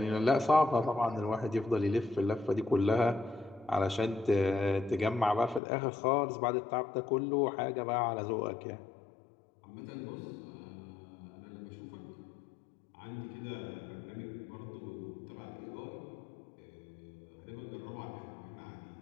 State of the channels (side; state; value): right; drops out; at 5.6 s